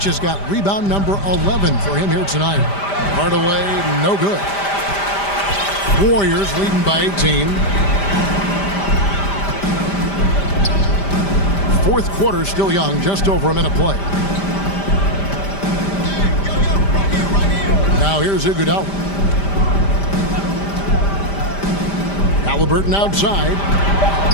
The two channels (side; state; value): right; late; 5.0 ms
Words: has got rebound number 11 for him here tonight. Hardaway, no good. Warriors leading by 18. Fourth quarter still young, just over a minute play. Now here's Iguodala. Halliburton outside.